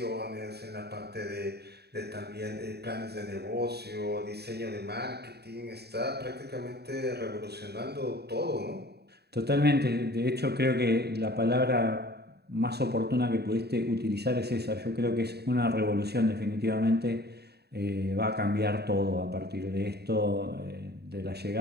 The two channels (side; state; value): left; late; 0.47 ms